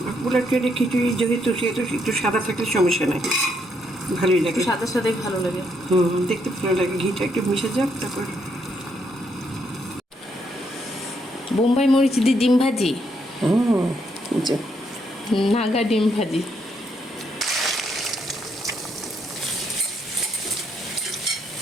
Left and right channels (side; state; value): both; normal; correlation 0.75